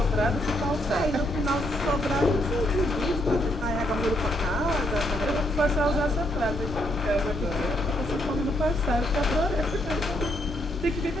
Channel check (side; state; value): both; normal; correlation 0.74